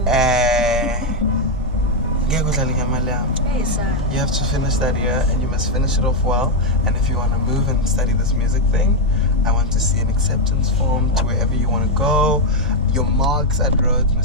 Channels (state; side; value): normal; both; correlation 0.03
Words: Hey, sir. you have to finish that year, and you must finish it off well. And if you want to move and study this music thing, I want to see an acceptance form to wherever you want to go. Your marks at Rhodes